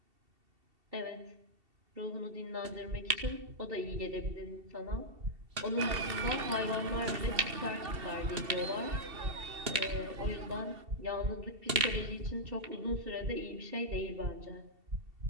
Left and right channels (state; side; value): late; left; 2.7 ms